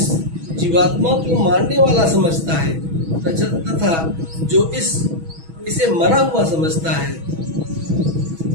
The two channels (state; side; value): late; left; 6.2 ms